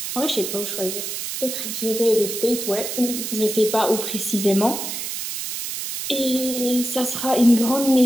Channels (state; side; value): noise; right; hiss, 5 dB below the sound